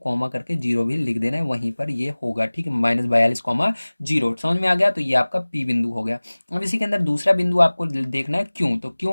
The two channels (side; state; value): both; inverted; correlation -1.00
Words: करके जीरो भी लिख देना है, वहीं पर ये होगा। ठीक है, -42,0। समझ में आ गया, तो ये आपका पी बिंदु हो गया। अब इसी के अंदर दूसरा बिंदु आपको देखना है क्यों। तो